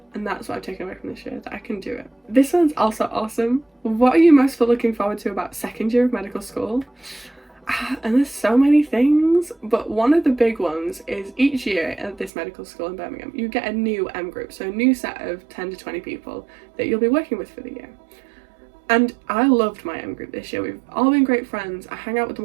And that's what I've taken away from this year, that I can do it. This one's also awesome. What are you most looking forward to about 2nd year of medical school? And there's so many things, but one of the big ones is each year at this medical school in Birmingham, you get a new M group, so a new set of 10 to 20 people that you'll be working with for the year. And I loved my M group this year. We've all been great friends. I hang out with them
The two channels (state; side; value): drops out; left; at 12.3 s